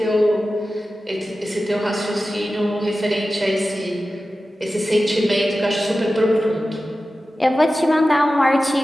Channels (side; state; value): both; normal; correlation 0.94